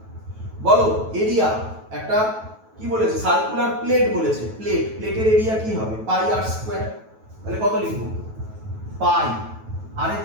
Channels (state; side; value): late; left; 9.2 ms